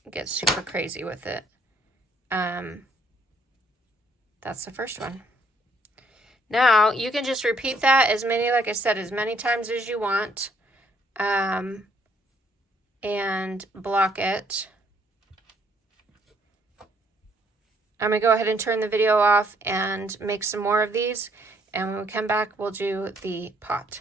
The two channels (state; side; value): normal; both; correlation 0.67